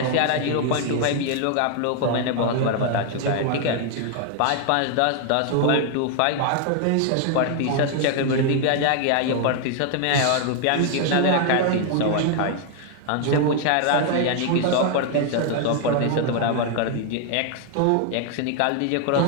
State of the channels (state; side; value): different; both; correlation 0.00